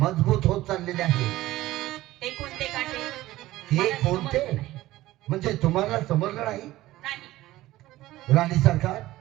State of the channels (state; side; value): quieter; left; 16.5 dB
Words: होत चाललेले आहेत. ते कोणते काटे? ते मला कोणते? समजलं नाही. म्हणजे तुम्हाला समजलं नाही? नाही. राणी सरकार,